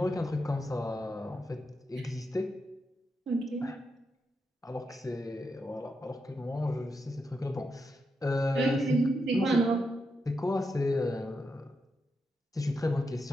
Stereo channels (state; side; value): normal; both; correlation 0.84